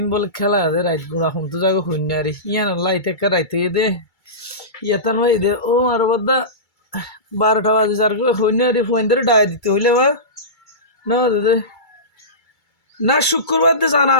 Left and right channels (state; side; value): late; right; 2.3 ms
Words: বলে খেলা আছে রাইত গুড়া হম তো যাগো হইনি আর ইয়ান লাইতে রাইত হইয়ে দে ইয়াতান হয়ে দে ও আর বদ্ধা 12টা বাজে যার হইনি আর পয়েন্ট ধরে ডায় দিতে হইলে বা না দাদা না শুক্রবার দিয়ে জানা